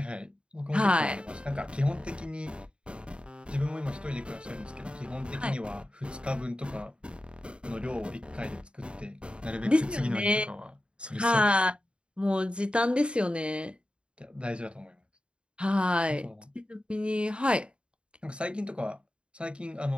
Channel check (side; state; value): left; late; 0.054 ms